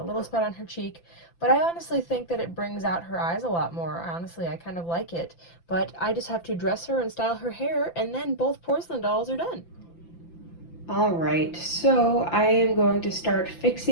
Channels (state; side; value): late; right; 5.9 ms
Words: little spot on her cheek, but I honestly think that it brings out her eyes a lot more. Honestly, I kind of like it, but I just have to dress her and style her hair, and then both porcelain dolls are done. Alright, so I am going to start